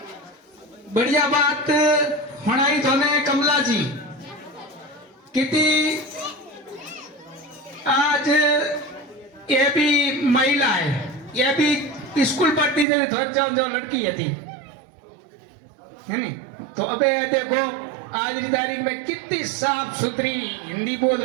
बढ़िया बात हणाई थोने कमला जी कितनी आज ये भी महिला है, ये भी स्कूल पढ़ती थी, थोड़ी जो लड़की थी है नहीं। तो अबे ये देखो आज की तारीख में कितनी साफ सुथरी हिंदी बोल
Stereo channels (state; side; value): drops out; left; at 12.9 s